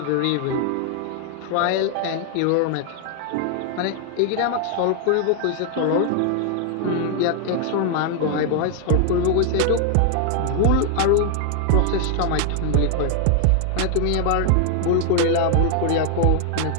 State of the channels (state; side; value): different; both; correlation 0.00